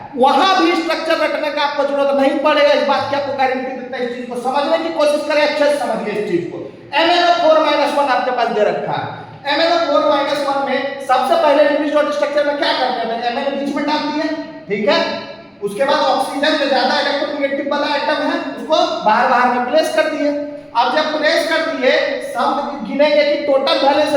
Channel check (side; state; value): both; identical; correlation 1.00